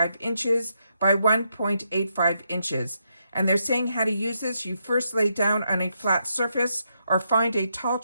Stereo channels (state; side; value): inverted; both; correlation -0.80